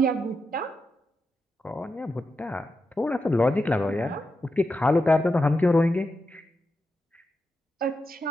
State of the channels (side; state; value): both; normal; correlation 0.87